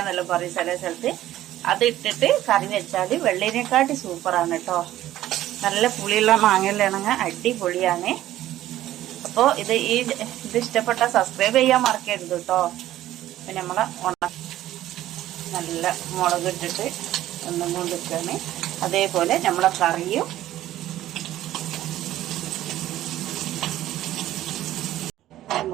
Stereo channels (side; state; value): left; quieter; 13.8 dB